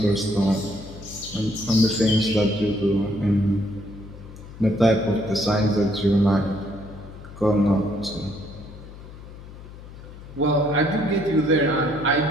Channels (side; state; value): left; noise; hum, 16 dB below the sound